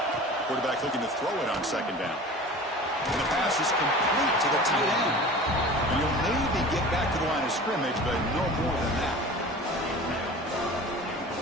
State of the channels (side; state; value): both; normal; correlation 0.39